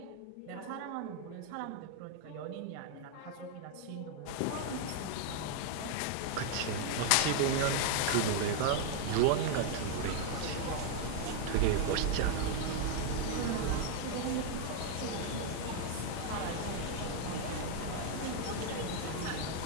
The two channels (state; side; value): different; both; correlation 0.00